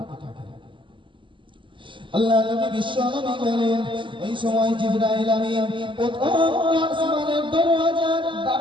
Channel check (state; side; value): late; left; 0.24 ms